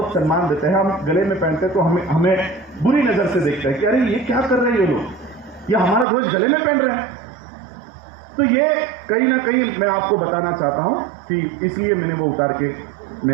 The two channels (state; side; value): drops out; left; at 6.1 s